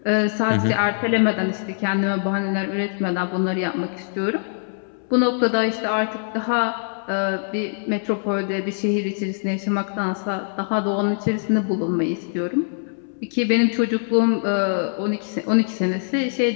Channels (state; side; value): silent; right; 64 dB below the other